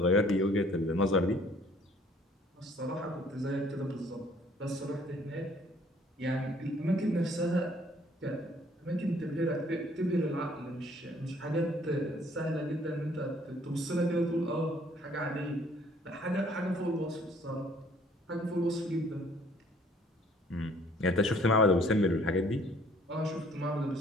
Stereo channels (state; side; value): normal; both; correlation 0.59